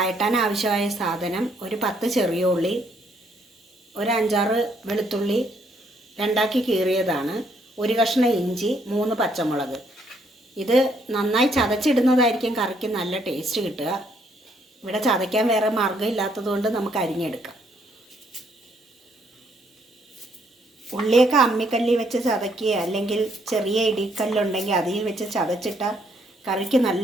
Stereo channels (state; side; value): normal; both; correlation 0.70